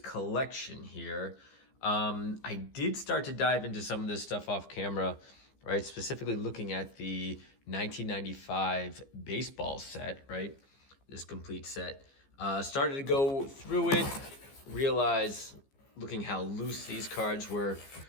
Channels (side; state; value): right; late; 15 ms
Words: here. I did start to dive into some of this stuff off camera, right? Specifically looking at the 1995 baseball set, right? This complete set. Started to go through it, realize looking how loose these cards were,